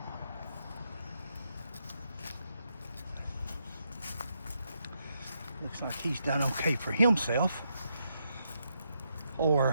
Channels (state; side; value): inverted; both; correlation -0.80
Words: Looks like he's done okay for himself or